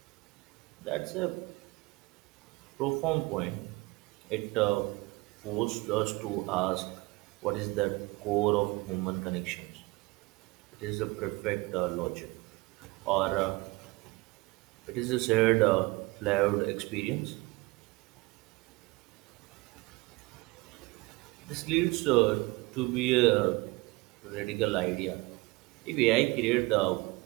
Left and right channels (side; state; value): left; quieter; 23.3 dB